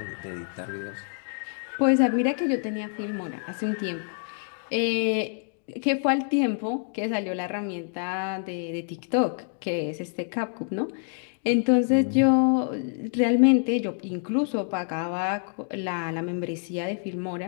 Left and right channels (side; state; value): right; silent; 60 dB below the other